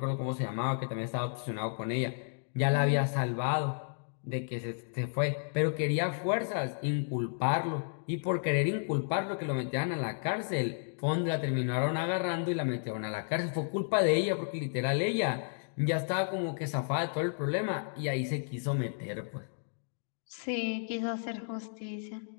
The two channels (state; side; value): silent; right; digital silence